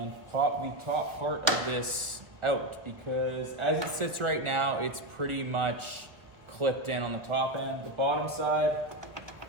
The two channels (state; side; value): late; left; 1.2 ms